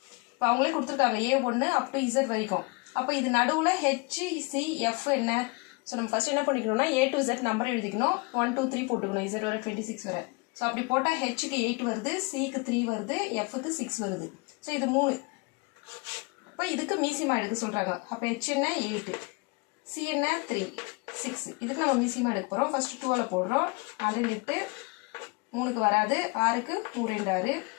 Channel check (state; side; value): quieter; right; 28.9 dB